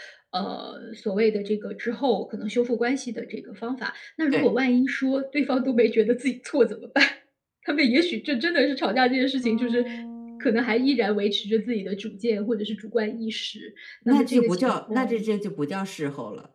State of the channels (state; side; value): identical; both; correlation 1.00